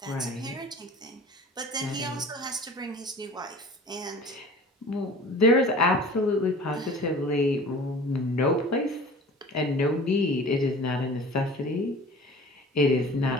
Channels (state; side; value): normal; both; correlation 0.43